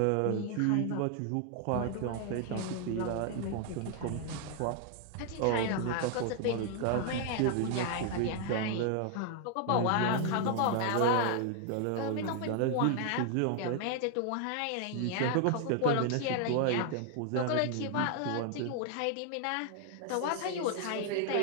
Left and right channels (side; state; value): both; different; correlation 0.00